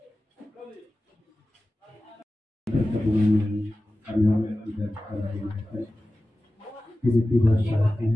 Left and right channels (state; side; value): normal; both; correlation 0.95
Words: Pertemuan kami tidak tiba-tiba